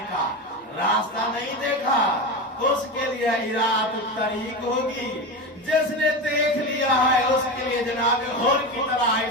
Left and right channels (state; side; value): normal; both; correlation 0.21